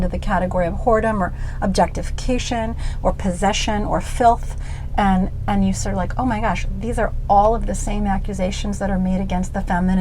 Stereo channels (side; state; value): both; identical; correlation 1.00